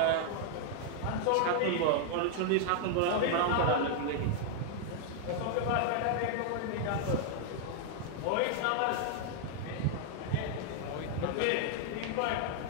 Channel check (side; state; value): both; different; correlation 0.00